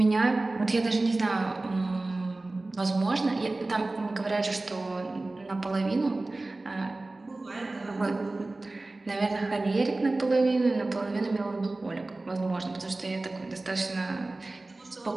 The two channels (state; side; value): quieter; left; 3.0 dB